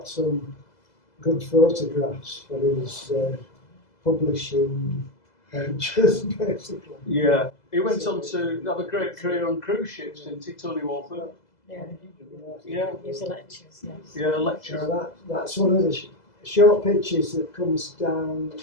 some good photographs for his publishing ventures, basically. Yeah, he went on to have a great career on cruise ships, didn't he, Tony Walton? Yeah. Yeah. He was a lectures, yes. Yeah, a lecturer. So that's one of the short pictures that comes down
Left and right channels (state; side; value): late; right; 2.0 ms